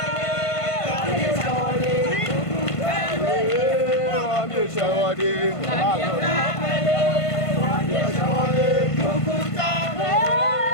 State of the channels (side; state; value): right; late; 1.5 ms